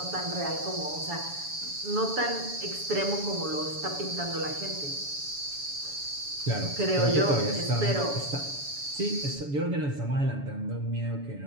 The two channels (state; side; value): late; left; 7.0 ms